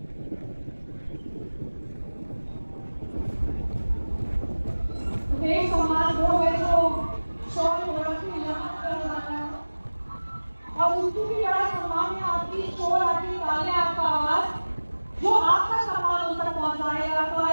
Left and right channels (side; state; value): both; inverted; correlation -1.00